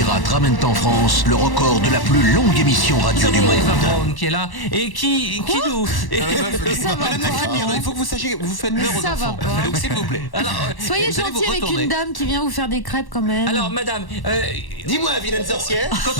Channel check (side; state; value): right; late; 1.1 ms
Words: ramènent en France le record de la plus longue émission radio du monde. Eva Braun qui est là et qui nous... Madame la Crémière, il faut que vous sachiez, vous faites peur aux Ça va enfants. pas. Donc s'il vous plaît. Alors, Soyez vous allez vous gentil avec retourner. une dame qui vient vous faire des crêpes quand même. alors madame, Dis-moi, vilaine sorcière, quand